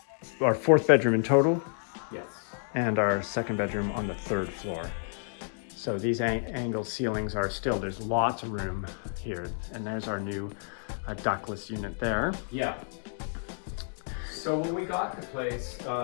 4th bedroom in total. Yes. And our 2nd bedroom on the 3rd floor. So these angled ceilings are still, there's lots of room here. And there's our new ductless unit there. Yeah. So when we got the place,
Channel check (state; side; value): silent; right; 58 dB below the other